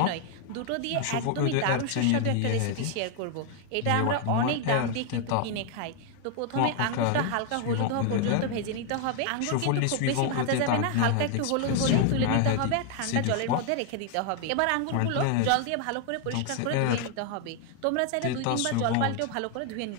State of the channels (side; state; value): both; different; correlation 0.00